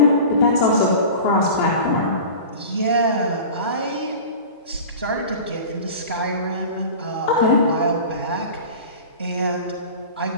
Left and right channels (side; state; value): both; inverted; correlation -0.36